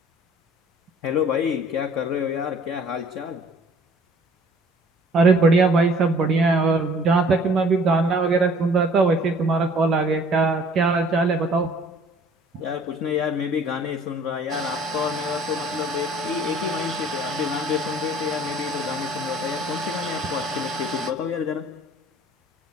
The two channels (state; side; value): normal; both; correlation 0.54